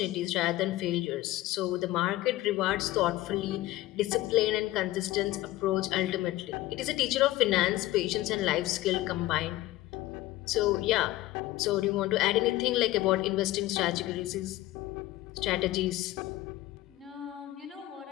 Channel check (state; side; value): quieter; right; 16.8 dB